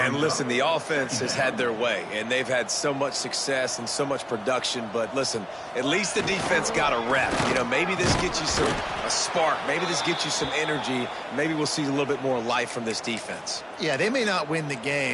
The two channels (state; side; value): identical; both; correlation 1.00